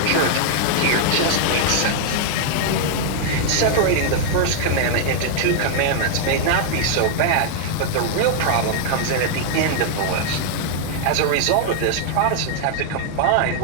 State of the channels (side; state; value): both; different; correlation -0.01